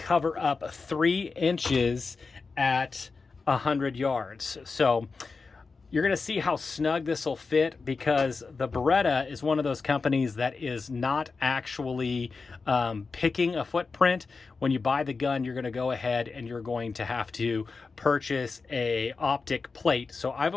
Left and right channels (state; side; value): quieter; right; 4.4 dB